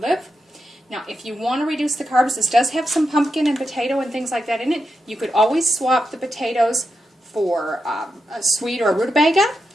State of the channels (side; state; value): both; normal; correlation 0.87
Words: Now, if you want to reduce the carbs, this does have some pumpkin and potato and things like that in it. You could always swap the potatoes for a sweet or a rutabaga,